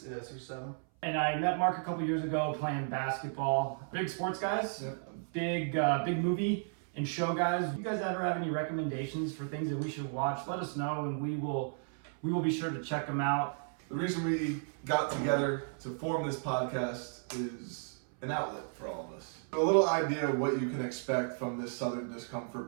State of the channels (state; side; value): silent; left; 55 dB below the other